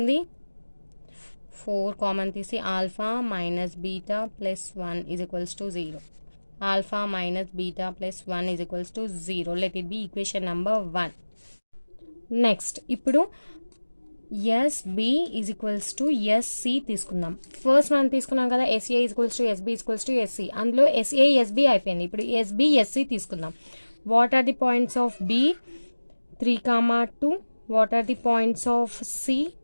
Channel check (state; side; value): inverted; both; correlation -1.00